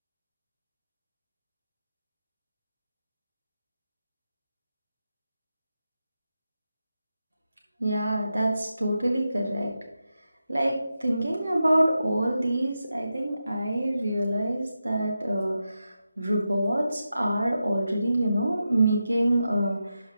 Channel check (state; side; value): inverted; both; correlation -0.90